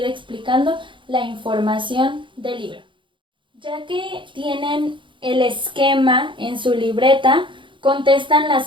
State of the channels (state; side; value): late; left; 0.24 ms